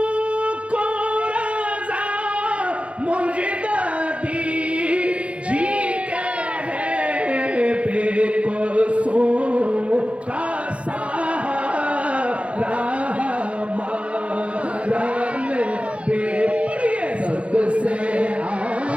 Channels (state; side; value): late; left; 0.062 ms